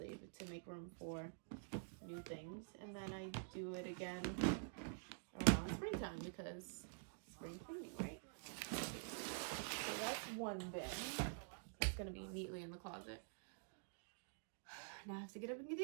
to make room for new things. And then I do it again around springtime because spring cleaning, right? So that's one bin. It's going to be neatly in the closet. Now I have to get up and get the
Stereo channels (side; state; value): left; silent; digital silence